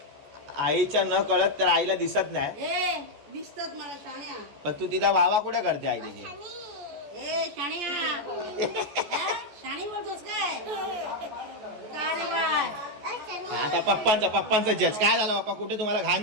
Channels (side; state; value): left; late; 14 ms